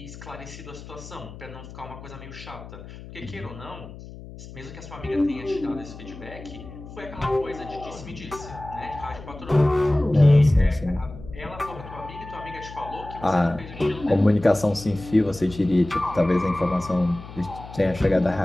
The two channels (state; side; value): noise; left; hum, 15 dB below the sound